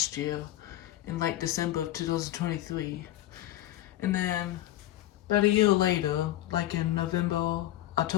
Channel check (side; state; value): right; quieter; 14.5 dB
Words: year in like December of 2023. And then about a year later, like in